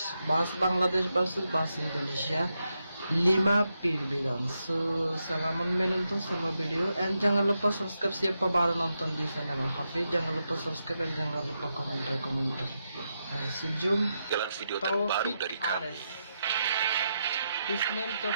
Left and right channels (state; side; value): inverted; both; correlation -0.85